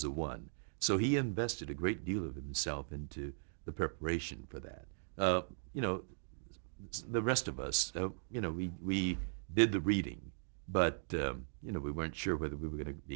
the one. So he invested a great deal of himself into the preparation for that. The rest of us, we did the reading, but we weren't sure whether we were going to be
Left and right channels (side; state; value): left; silent; digital silence